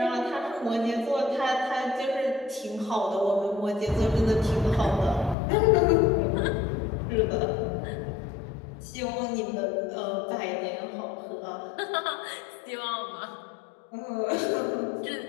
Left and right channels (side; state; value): right; drops out; at 5.4 s